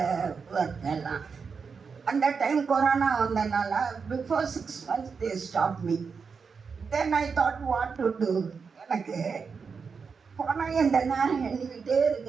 work எல்லாம். அந்த டைம் கொரோனா வந்தனால before 6 months they stopped me. Then I thought what to do. எனக்கு பணம் எந்த நேரம் எண்ணிக்கிட்டே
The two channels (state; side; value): quieter; left; 5.5 dB